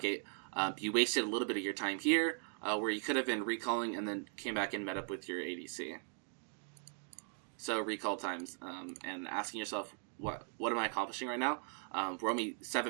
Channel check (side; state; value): left; silent; 52 dB below the other